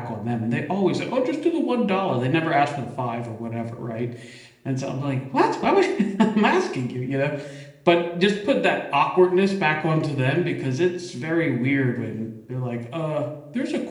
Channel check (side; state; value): both; identical; correlation 1.00